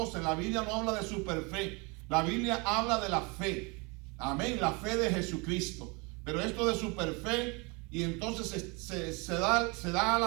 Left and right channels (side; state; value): left; quieter; 29.2 dB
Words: en la Biblia no habla de superfe, la Biblia habla de la fe, amén, la fe de Jesucristo. Pero esto de superfe, y entonces se